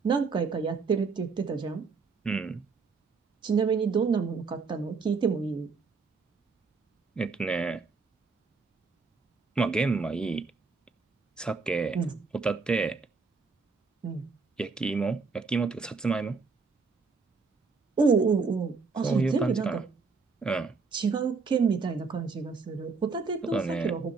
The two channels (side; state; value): left; quieter; 4.6 dB